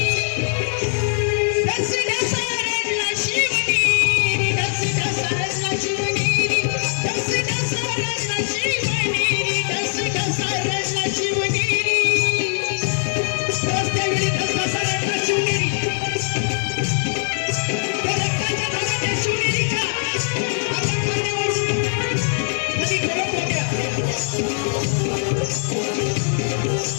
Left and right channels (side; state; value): right; silent; 65 dB below the other